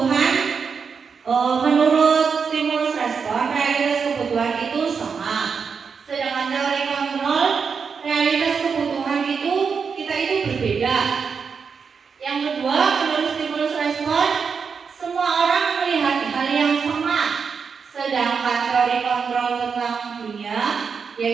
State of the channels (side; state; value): left; quieter; 5.9 dB